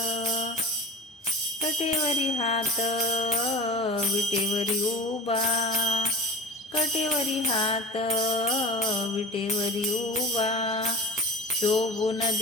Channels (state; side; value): normal; both; correlation 0.34